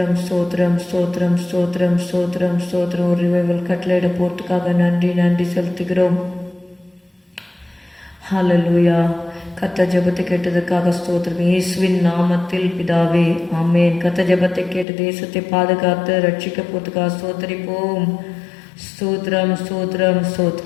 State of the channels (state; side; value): drops out; right; at 14.9 s